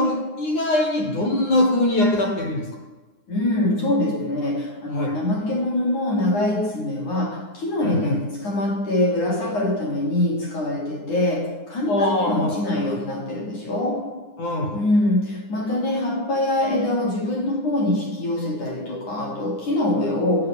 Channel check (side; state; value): right; late; 9.7 ms